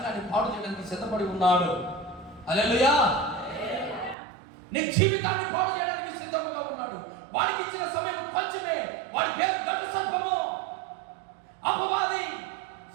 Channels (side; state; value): left; drops out; at 4.2 s